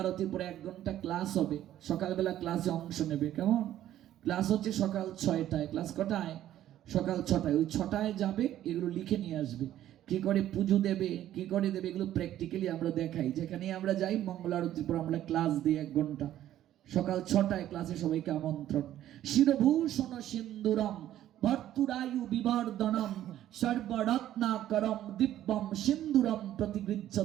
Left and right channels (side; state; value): left; quieter; 12.5 dB